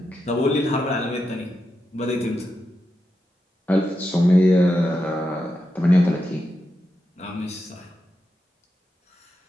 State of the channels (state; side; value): normal; both; correlation 0.87